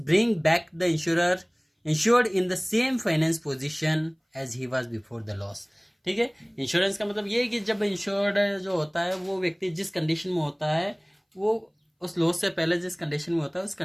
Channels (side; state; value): both; identical; correlation 1.00